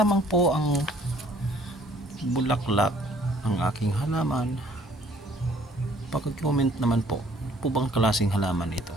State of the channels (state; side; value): normal; both; correlation 0.59